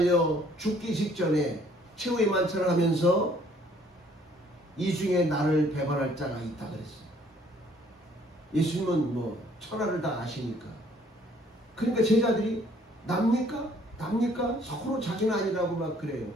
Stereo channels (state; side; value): normal; both; correlation 0.61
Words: 죽기 직전에 최후의 만찬을 하면서 이 중에 나를 배반할 자가 있다 그랬어요. 예수님은 뭐 천하를 다 아시니까. 그러니까 제자들이 납니까? 납니까? 서로 자기는 아니라고 막 그래요.